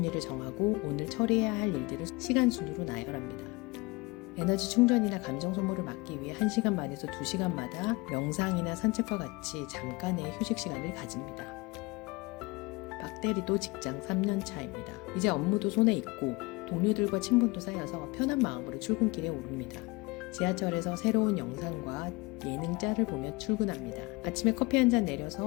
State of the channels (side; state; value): right; quieter; 24.7 dB